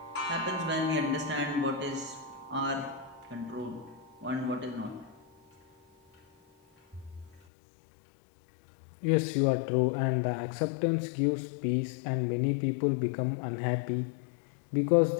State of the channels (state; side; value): drops out; right; at 7.4 s